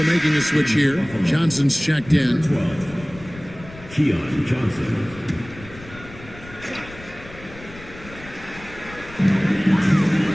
making a switch here. Johnson's checked in. 12. Keon Johnson.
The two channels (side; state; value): left; noise; rumble, 18 dB below the sound